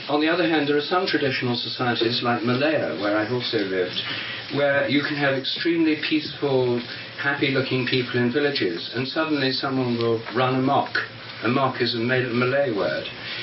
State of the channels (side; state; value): both; identical; correlation 1.00